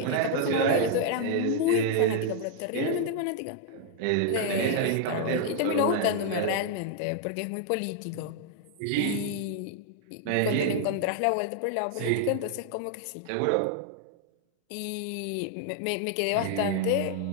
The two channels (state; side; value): different; both; correlation 0.00